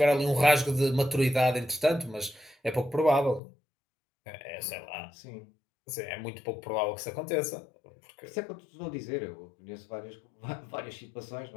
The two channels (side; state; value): right; drops out; at 3.4 s